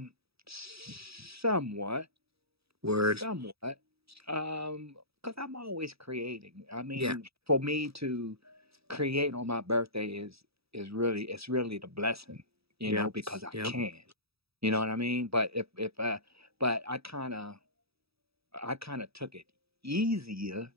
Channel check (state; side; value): late; left; 0.77 ms